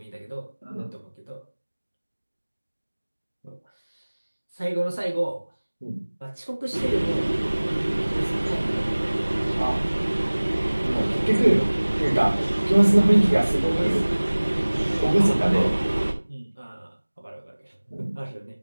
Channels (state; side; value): inverted; both; correlation -1.00